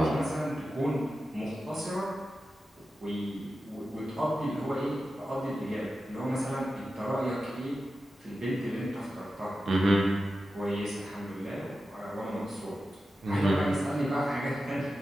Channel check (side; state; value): both; normal; correlation 0.92